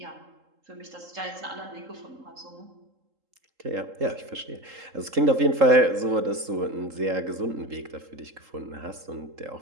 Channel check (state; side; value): late; left; 3.8 ms